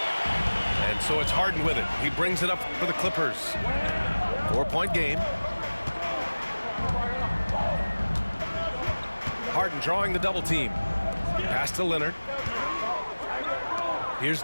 And so it's Harden with it. He brings it up for the Clippers. 4-point game. Harden drawing the double team. Pass to Leonard. Here's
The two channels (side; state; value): both; inverted; correlation -1.00